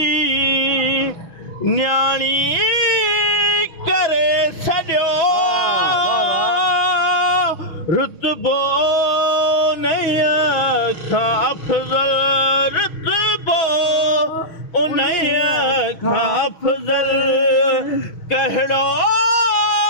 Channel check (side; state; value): right; late; 6.2 ms